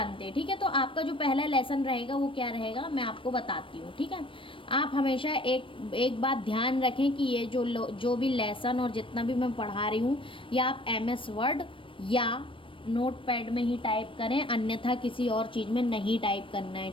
हैं। ठीक है, तो आपका जो पहला लेसन रहेगा वो क्या रहेगा मैं आपको बताती हूँ। ठीक है, आप हमेशा एक बात ध्यान रखें कि ये जो भी लेसन और जितना भी मैं पढ़ा रही हूँ, या आप एमएस वर्ड या नोटपैड में ही टाइप करें, अन्यथा किसी और चीज़ में नहीं टाइप करना है।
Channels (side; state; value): right; late; 0.25 ms